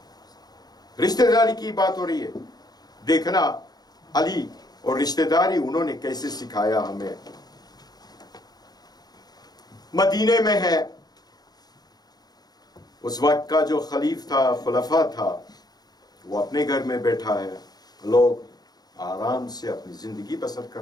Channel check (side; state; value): right; late; 0.19 ms